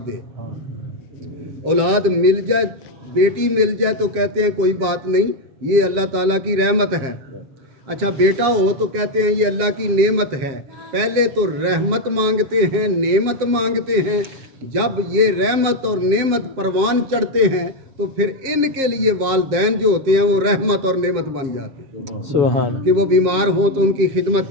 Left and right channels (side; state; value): left; late; 7.5 ms